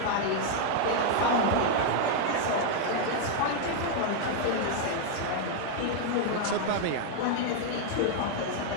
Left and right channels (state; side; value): different; both; correlation 0.00